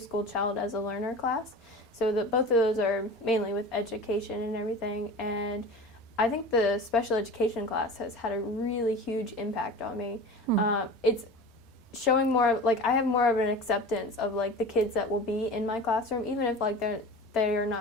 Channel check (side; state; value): both; normal; correlation 0.35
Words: School Child as a Learner class. So both of those are mainly with education and everything. And I think the special education class has had a really huge impact on me. It's showing more, like, I have more of an acceptance of, like, the kids that will be in my classroom, even if, like, they are